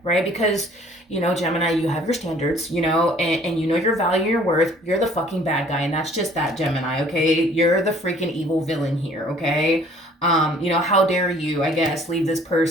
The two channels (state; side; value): normal; both; correlation 0.55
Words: right? Because, you know, Gemini, you have your standards, you know, and you know your value, your worth. You're the fucking bad guy, and that's just that, Gemini, okay? You're the freaking evil villain here, okay? You know, how dare you, I guess, leave this